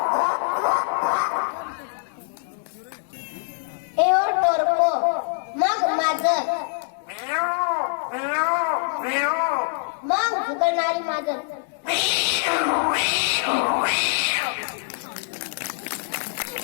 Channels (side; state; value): right; silent; 62 dB below the other